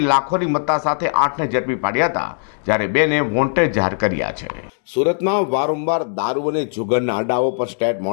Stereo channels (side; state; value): right; silent; digital silence